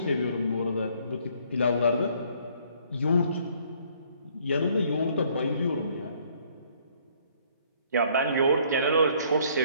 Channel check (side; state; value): both; inverted; correlation -0.63